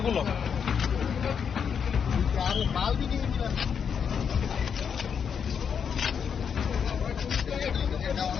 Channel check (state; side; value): quieter; right; 7.1 dB